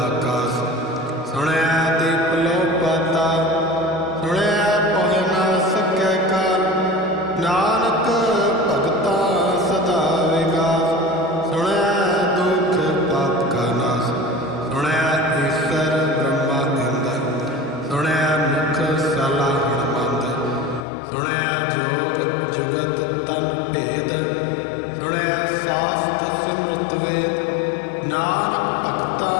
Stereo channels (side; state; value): right; drops out; at 20.9 s